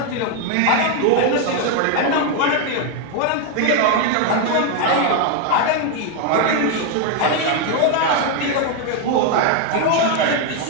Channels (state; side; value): different; both; correlation 0.01